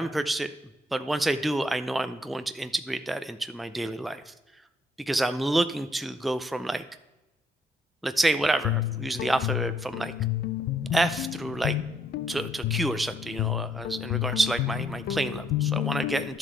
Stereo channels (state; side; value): normal; both; correlation 0.70